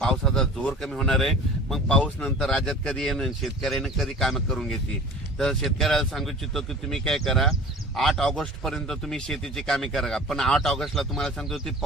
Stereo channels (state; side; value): normal; both; correlation 0.40